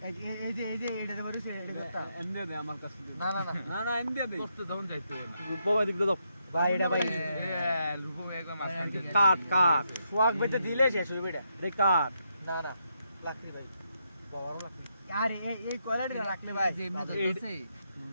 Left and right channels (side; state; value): both; inverted; correlation -0.80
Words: এই যে এটা তো করেছে এটা কথা। এমনি দে আমার কাছে না না না না না এমনি দে করতে তখন যাইতে রূপবা এদিক দিয়ে দাও ভাই এটা ভাই রূপম একদম মাঝখান থেকে কাট সোয়াগ বেতে দিলে শেষ হইবে এটা। এটা কাট না না লাকড়ি ভাই বড় লাকড়ি। আরে এই কোয়ালিটি রাখলে ভাই যে এমনি ধরছে